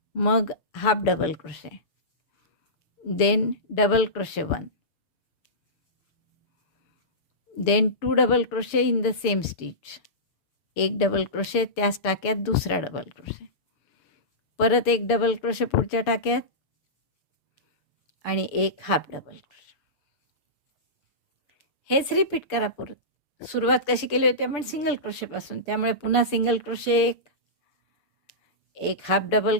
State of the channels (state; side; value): late; right; 6.8 ms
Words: मग half double crochet, then double crochet 1, then 2 double crochet in the same stitch एक डबल क्रोशे, त्याच टाक्यात दुसरा डबल क्रोशे, परत एक डबल क्रोशे पुढच्या टाक्यात आणि एक हाफ डबल क्रोशे. हेच रिपीट करा परत. सुरुवात कशी केली होती आपण सिंगल क्रोशेपासून, त्यामुळे पुन्हा सिंगल क्रोशे एक हाफ डबल